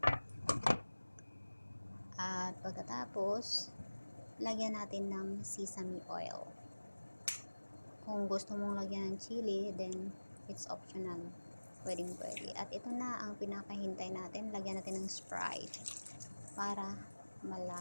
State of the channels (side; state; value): both; inverted; correlation -1.00